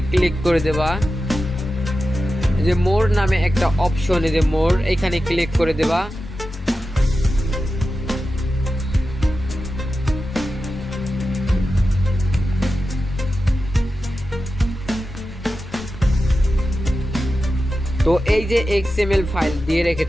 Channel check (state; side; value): normal; both; correlation 0.92